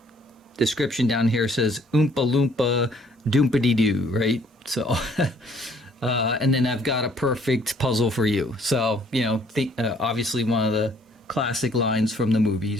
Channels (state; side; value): normal; both; correlation 0.61